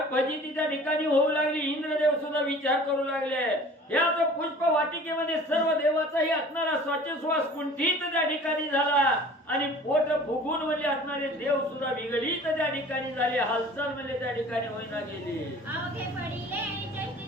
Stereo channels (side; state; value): both; normal; correlation 0.46